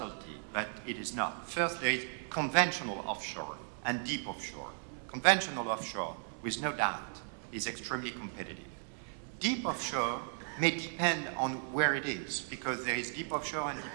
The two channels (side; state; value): left; silent; 54 dB below the other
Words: but it is not. Firstly, conventional offshore and deep offshore. Conventional offshore, with no doubt, is extremely competitive. Deep offshore may depend on where it is, because there is deep offshore and